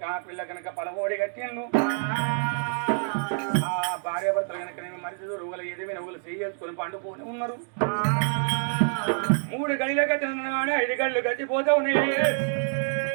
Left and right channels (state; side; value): silent; left; 57 dB below the other